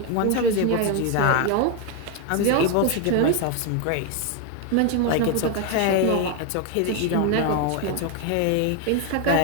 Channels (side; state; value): both; different; correlation 0.01